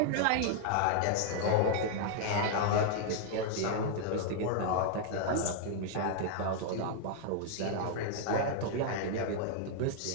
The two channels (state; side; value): different; both; correlation -0.01